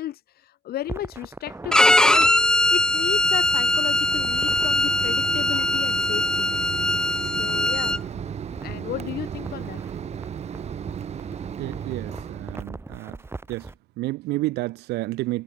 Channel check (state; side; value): normal; both; correlation 0.72